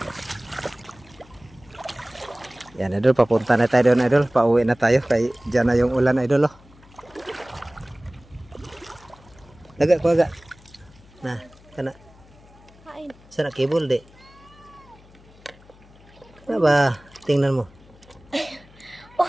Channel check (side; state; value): left; noise; hum, 25 dB below the sound